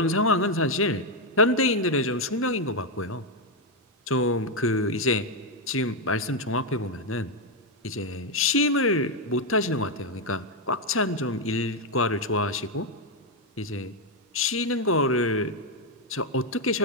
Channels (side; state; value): both; normal; correlation 0.03